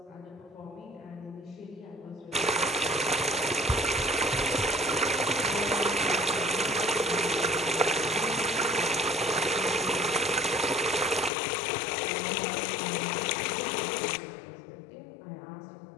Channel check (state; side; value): drops out; right; at 11.3 s